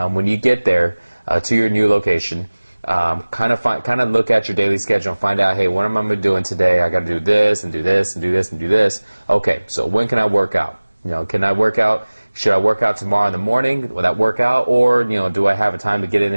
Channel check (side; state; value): both; inverted; correlation -1.00